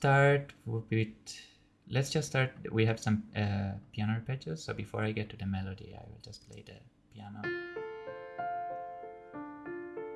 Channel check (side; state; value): both; identical; correlation 1.00